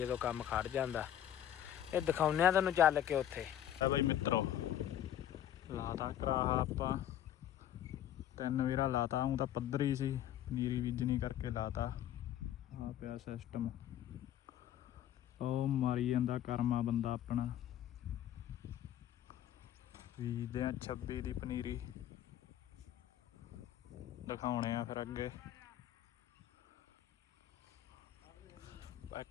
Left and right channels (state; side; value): quieter; right; 11.3 dB